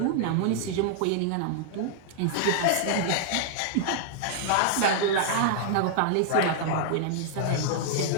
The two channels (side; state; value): both; different; correlation -0.01